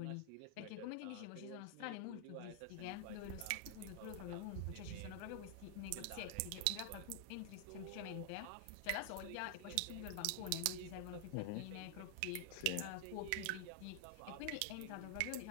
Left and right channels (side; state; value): both; different; correlation 0.00